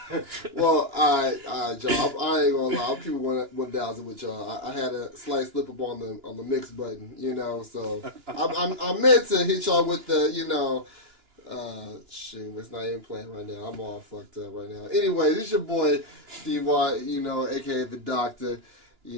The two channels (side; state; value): left; late; 2.9 ms